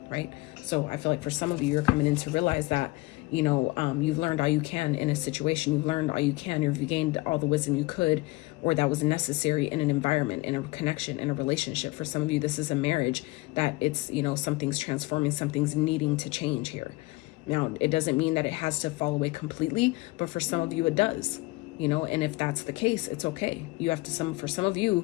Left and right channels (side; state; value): right; quieter; 21.9 dB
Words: right? So I feel like for some of you, you're coming in to realize that, you've learned all you can in a situation. You've learned all you can. You've gained all the wisdom you could, or that was necessary in an environment, in a connection, in a relationship. For some of you, this is a marriage that it's, something's transforming, something's needing to change here. Now, it doesn't mean that it has to fall away completely, but for some of you, it does, and if that's the case, it's okay. For some of